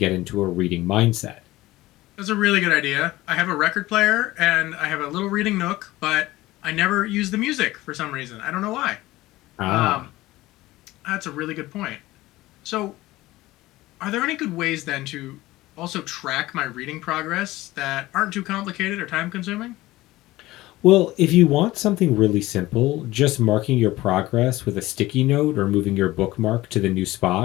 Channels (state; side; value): quieter; right; 17.9 dB